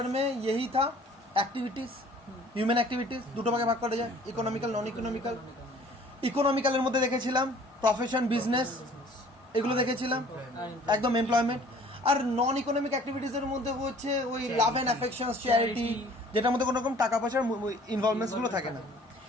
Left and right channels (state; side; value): normal; both; correlation 0.52